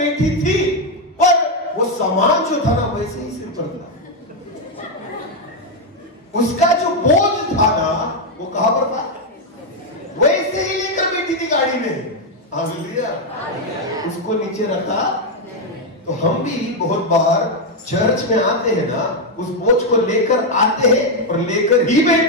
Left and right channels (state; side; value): normal; both; correlation 0.03